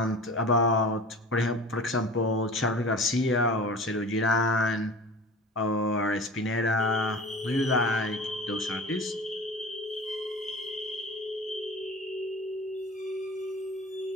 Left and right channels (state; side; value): normal; both; correlation 0.38